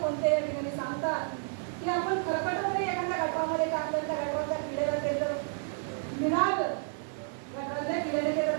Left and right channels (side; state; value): left; silent; 57 dB below the other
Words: कोणते या ठिकाणी सांगतात की आपण खरकटमध्ये एखाद्या गटामध्ये टाकलं, त्या गटाच्या किड्याला ते जर मिळालं, गटातल्या किड्याने ते